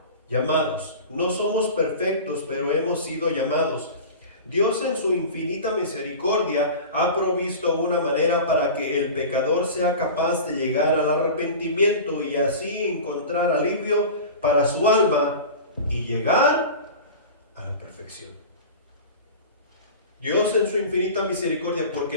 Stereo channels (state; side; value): inverted; both; correlation -0.34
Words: llamados. No somos perfectos, pero hemos sido llamados. Dios en su infinita misericordia ha provisto una manera para que el pecador sea capaz de llegar al arrepentimiento y así encontrar alivio para su alma y llegar a la perfección. Dios en su infinita misericordia,